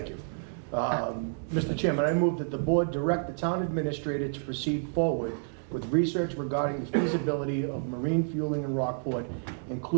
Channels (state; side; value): silent; left; 58 dB below the other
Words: you. Mr. Chairman, I move that the board direct the town administrator to proceed forward with research regarding the feasibility of marine fueling in Rockport,